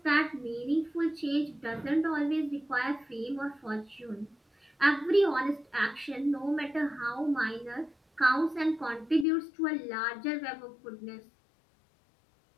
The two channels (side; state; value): right; drops out; at 9.2 s